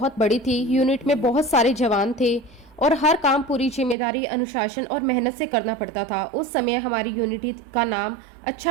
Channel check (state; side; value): drops out; left; at 4.0 s